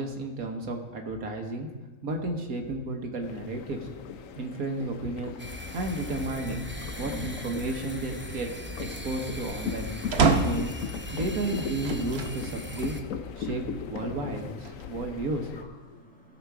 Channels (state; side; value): normal; both; correlation 0.08